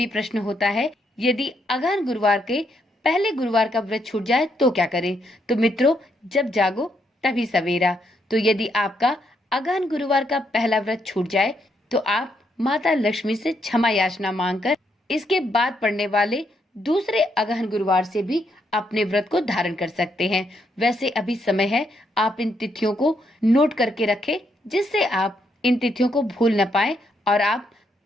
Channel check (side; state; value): both; normal; correlation 0.76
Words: प्रश्न होता है, यदि अगहन गुरुवार के पहले गुरुवार का व्रत छूट जाए तो क्या करें। तो मित्रों, जब जागो तभी सवेरा। तो यदि आपका अगहन गुरुवार का पहला व्रत छूट जाए तो आप माता लक्ष्मी से क्षमा याचना मांगकर इसके बाद पड़ने वाले दूसरे अगहन गुरुवार से भी अपने व्रत को धारण कर सकते हैं। वैसे अभी समय है, आप इन तिथियों को नोट करके रखें जिससे आप इन तिथियों को भूल न पाए और आप